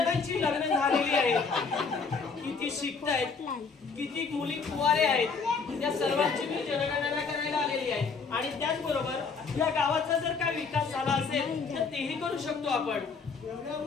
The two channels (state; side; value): quieter; right; 5.0 dB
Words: लग्न झालेली आहेत. किती शिकतायत. किती मुली कुवारे आहेत. या सर्वांची मी जनगणना करायला आलेली आहे. आणि त्याचबरोबर या गावाचा जर काय विकास झाला असेल तर तेही करू शकतो आपण.